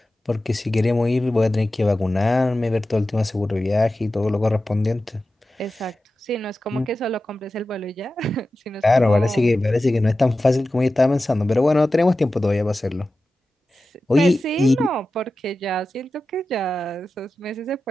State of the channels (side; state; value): both; normal; correlation 0.94